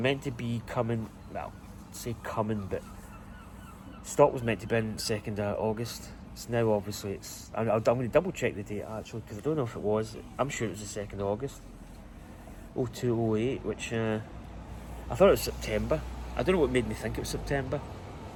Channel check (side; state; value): both; identical; correlation 1.00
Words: to be coming, well, say coming, but stock was meant to be in 2nd of August. It's now, obviously, I'm going to double check the date actually, because I don't know if it was. I'm sure it was the 2nd of August. 0208, which I thought it was September. I don't know what made me think it was September,